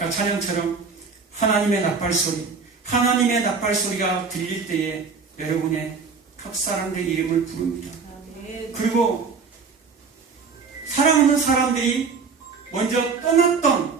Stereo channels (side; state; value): left; quieter; 5.1 dB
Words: 찬양처럼 하나님의 나팔소리, 하나님의 나팔소리가 들릴 때에 여러분의 각 사람들의 이름을 부릅니다. 그리고 사랑하는 사람들이 먼저 떠났던